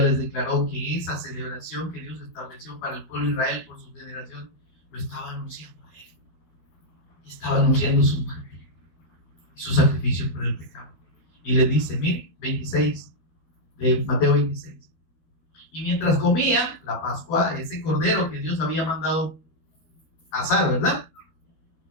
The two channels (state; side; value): late; right; 12 ms